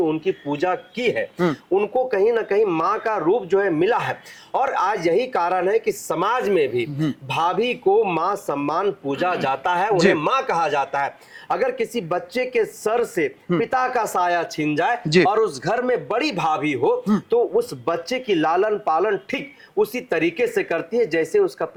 उनकी पूजा की है, उनको कहीं ना कहीं मां का रूप जो है मिला है। और आज यही कारण है कि समाज में भी भाभी को मां सम्मान पूजा जाता है, उन्हें मां कहा जाता है। अगर किसी बच्चे के सर से पिता का साया छिन जाए और उस घर में बड़ी भाभी हो तो उस बच्चे की लालन पालन ठीक उसी तरीके से करती है जैसे उसका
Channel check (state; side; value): identical; both; correlation 1.00